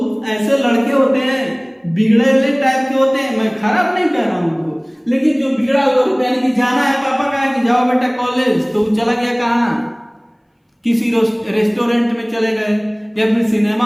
ऐसे लड़के होते हैं बिगड़े हुए टाइप के होते हैं, मैं खराब नहीं कह रहा हूँ उनको, लेकिन जो बिगड़ा हुआ रूप, यानी कि जाना है, पापा कहा कि जाओ बेटा कॉलेज, तो चला गया कहाँ, किसी रेस्टोरेंट में चले गए या फिर सिनेमा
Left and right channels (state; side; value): identical; both; correlation 1.00